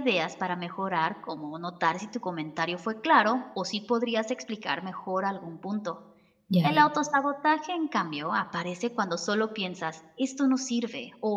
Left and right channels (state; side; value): identical; both; correlation 1.00